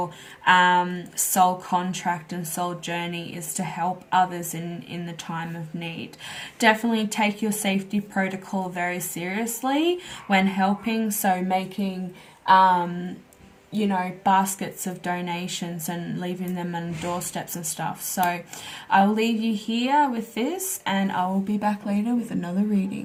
soul contract and soul journey, is to help others in the time of need. Definitely take your safety protocol very seriously when helping. So making you know, baskets of donations and leaving them on doorsteps and stuff. So I'll leave you here with this, and I will be back later with another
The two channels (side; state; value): both; identical; correlation 1.00